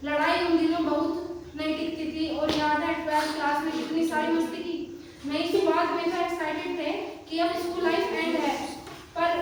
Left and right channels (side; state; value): both; identical; correlation 1.00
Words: लड़ाई उन दिनों बहुत नहीं टिकती थी। और याद है 12th क्लास में कितनी सारी मस्ती की। नई शुरुआत में तो एक्साइटेड थे कि अब स्कूल लाइफ एंड है, पर